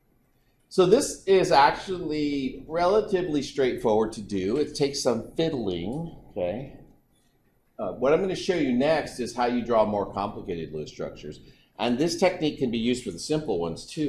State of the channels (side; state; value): both; identical; correlation 1.00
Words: So this is actually relatively straightforward to do. It takes some fiddling, okay? What I'm going to show you next is how you draw more complicated Lewis structures. And this technique can be used for the simple ones